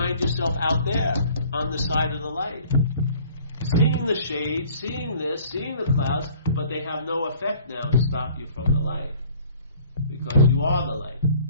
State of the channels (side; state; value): both; inverted; correlation -0.52